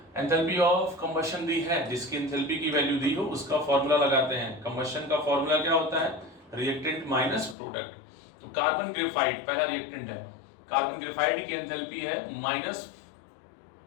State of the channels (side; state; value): right; drops out; at 7.6 s